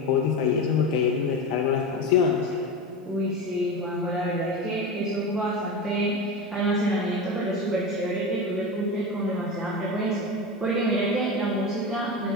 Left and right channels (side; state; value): both; normal; correlation 0.23